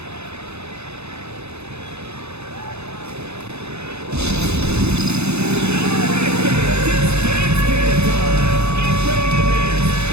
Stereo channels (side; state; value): left; late; 0.80 ms